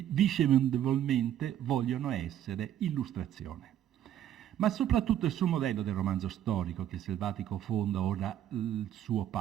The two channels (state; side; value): quieter; left; 11.0 dB